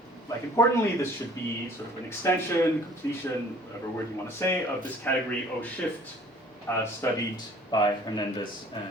like importantly, this should be sort of an extension, completion, whatever word you want to say, of this category O shift studied by Hernandez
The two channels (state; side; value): normal; both; correlation 0.53